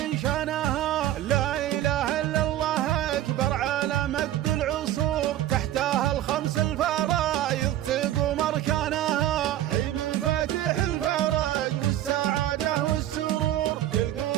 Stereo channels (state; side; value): quieter; left; 13.0 dB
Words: شانها، لا إله إلا الله أكبر على مد العصور، تحتها الخمس الفرائض تقوم أركانها، حين مفاتيح الفرج والسعادة والسرور،